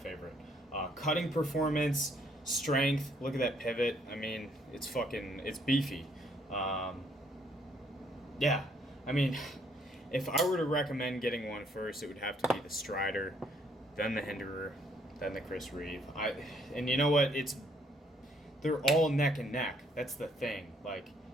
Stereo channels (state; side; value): normal; both; correlation 0.67